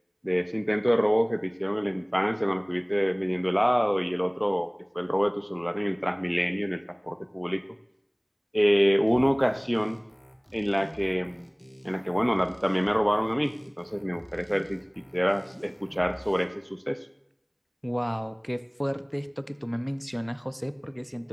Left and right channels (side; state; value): both; identical; correlation 1.00